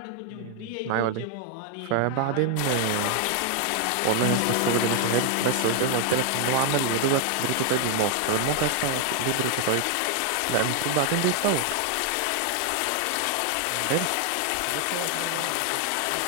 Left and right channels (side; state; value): both; different; correlation 0.00